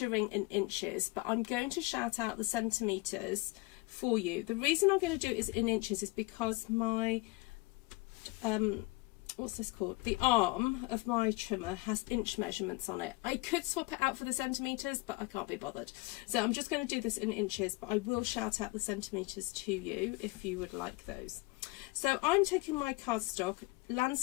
in inches, but I'm going to shout out the centimetres for you. The reason I'm going to do it is in inches is because my, what's this called? The arm of my trimmer has inch measurements on it. I could swap it out for the centimetres, but I can't be bothered. So I'm just going to do this in inches, but I will shout out the centimetres to you if you would like those. So I'm taking my cardstock,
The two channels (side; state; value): right; quieter; 23.6 dB